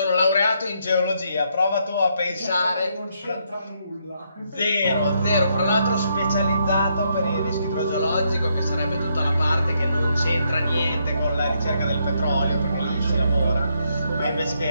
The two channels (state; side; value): inverted; both; correlation -0.75